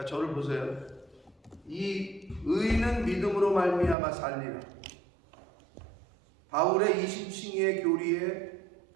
저를 보세요. 이 의인은 믿음으로 말미암아 살리라. 바울의 20층의 교리의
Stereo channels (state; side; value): drops out; left; at 4.0 s